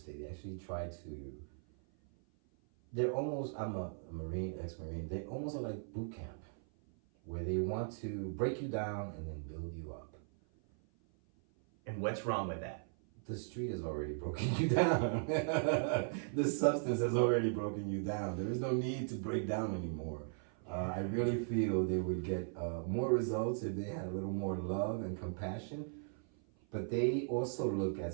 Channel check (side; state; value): left; silent; 52 dB below the other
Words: They actually try to... They're almost... I'm a Marine, ex-Marine. They almost are like boot camp, where they want to break you down and then build you up. And what's wrong with that? The street has already broken you down. The substance has already broken you down. There is no need to break down anymore. I really feel they would get more results if they had a little more love and compassion. But they also look at